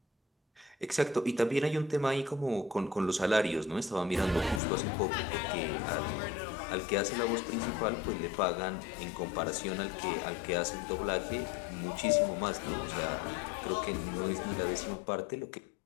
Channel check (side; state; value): right; drops out; at 4.6 s